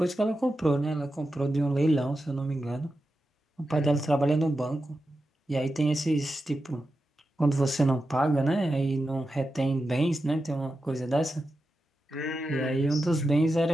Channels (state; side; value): normal; both; correlation 0.90